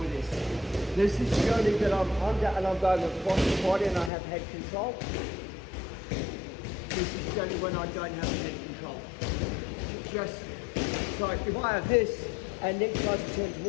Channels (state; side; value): drops out; right; at 4.1 s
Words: this. This is purely that I'm under and I'm going across the body and I have head control. This is only when I don't have head control. Just, so if I have this and Nick tries to turn